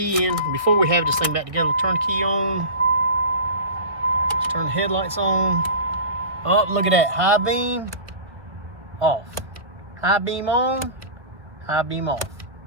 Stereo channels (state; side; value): late; left; 1.8 ms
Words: in. Before we have this thing back together, turn the key on. Let's turn the headlights on. Oh, look at that, high beam. Off. High beam on, high beam off.